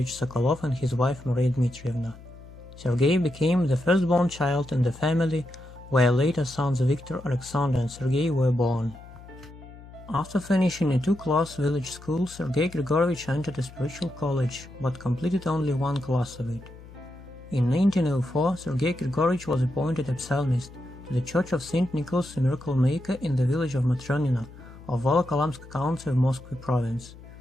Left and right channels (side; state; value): left; noise; hum, 18 dB below the sound